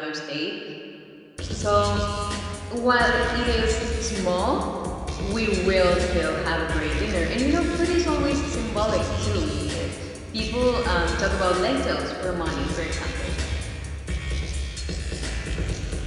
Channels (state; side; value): identical; both; correlation 1.00